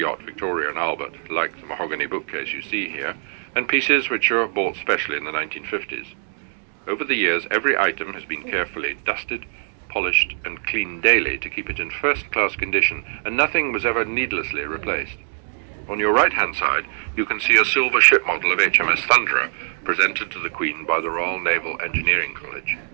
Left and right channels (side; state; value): left; silent; 64 dB below the other